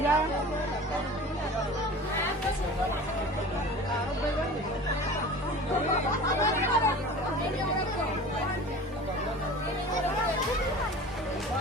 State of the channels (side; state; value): both; normal; correlation 0.38